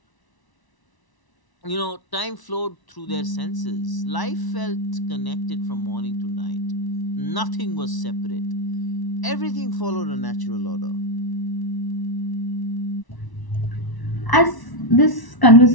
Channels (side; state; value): right; late; 1.0 ms